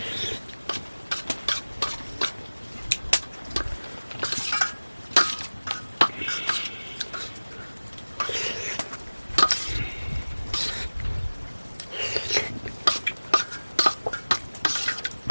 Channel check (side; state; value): both; inverted; correlation -1.00